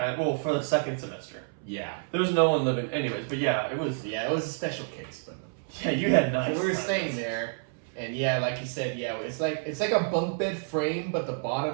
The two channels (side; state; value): left; silent; 59 dB below the other